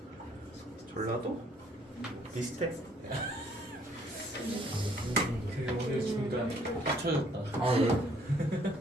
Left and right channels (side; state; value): both; normal; correlation 0.63